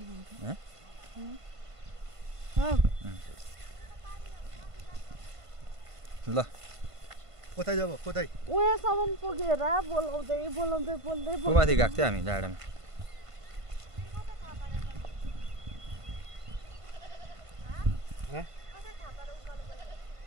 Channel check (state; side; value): late; left; 1.5 ms